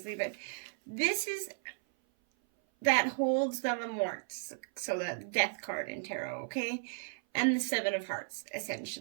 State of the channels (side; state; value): left; silent; 55 dB below the other